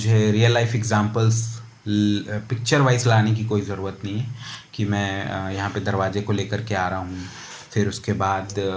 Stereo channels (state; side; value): identical; both; correlation 1.00